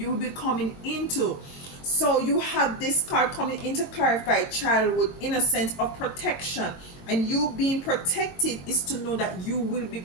will be coming into. So you have this card coming in to clarify childhood innocence of protection, and you being protected is to know that you will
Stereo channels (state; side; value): late; right; 22 ms